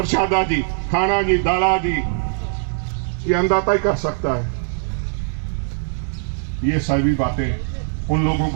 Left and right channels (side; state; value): left; silent; digital silence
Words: जी, खाना जी, दाला जी। ये अन्नदाता ही कर सकता है। ये सभी बातें उन लोगों